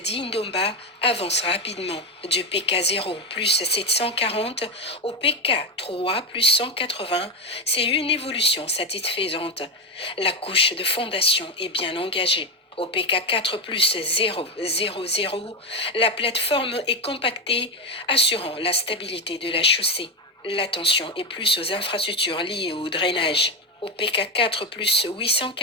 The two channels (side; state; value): both; normal; correlation 0.11